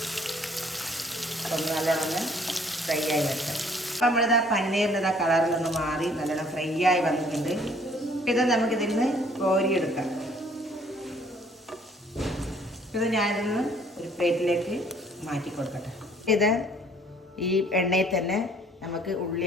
അതൊന്ന് നല്ലോണം ഫ്രൈ ആയി വരട്ടെ. അപ്പം നമ്മളിതാ പനീറിൻ്റെ കളറിലൊന്ന് മാറി നല്ലോണം ഫ്രൈ ആയി വന്നിട്ടുണ്ട്. ഇത് നമുക്കിതിൽ നിന്ന് കോരിയെടുക്കാം. ഇത് ഞാനിതൊന്ന് ഒരു പ്ലേറ്റിലേക്ക് മാറ്റി കൊടുക്കട്ടെ. ഇത് ഈ എണ്ണയിൽ തന്നെ നമുക്ക്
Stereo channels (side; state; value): both; normal; correlation 0.59